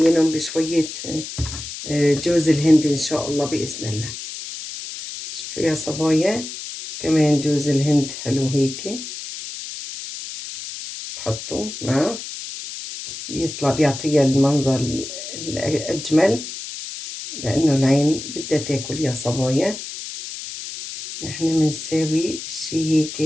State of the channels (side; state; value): left; noise; hiss, 9 dB below the sound